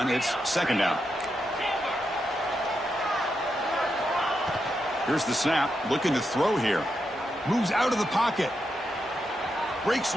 it's 2nd down. Here's the snap, looking to throw here. Moves out of the pocket. Breaks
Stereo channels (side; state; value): both; normal; correlation 0.85